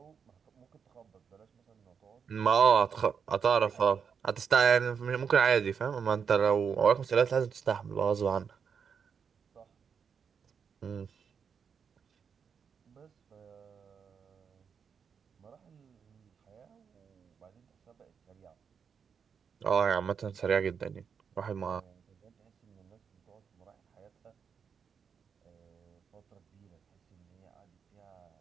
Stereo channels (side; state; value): left; quieter; 6.7 dB